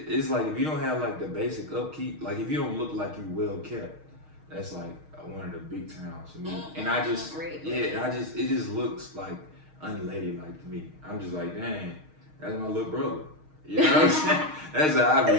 like if you don't have like the basic upkeep, like if you don't look like you well kept, that's like one of the big turn-offs for me. And it just looks like unladylike to me. I'm just like, dang, that's my little brother. You know what I'm saying? That's how I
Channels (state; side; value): late; left; 6.4 ms